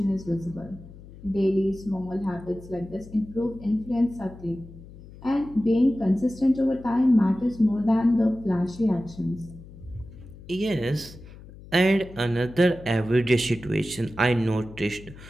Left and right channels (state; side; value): noise; left; hum, 18 dB below the sound